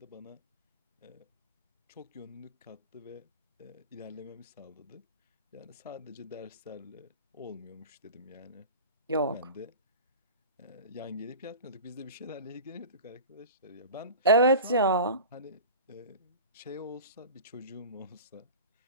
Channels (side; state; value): both; inverted; correlation -0.33